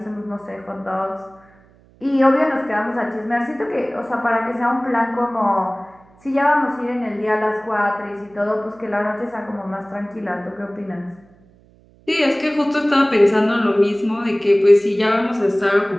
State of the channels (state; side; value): noise; right; hum, 29 dB below the sound